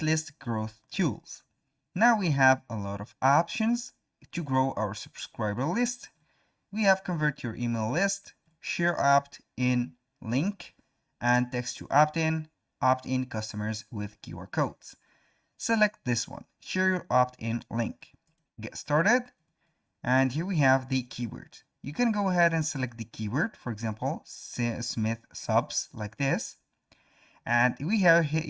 list growth tools. Now we have a lot of options to grow our subscriber list. We have convert your email list, share opt-in link, and text to opt-in customers with QR codes. Select this one, share your opt-in link. Get started, and here we have the keyword. You can go ahead and select the keyword, for example, Smith subs like this. And you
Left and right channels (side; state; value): both; identical; correlation 1.00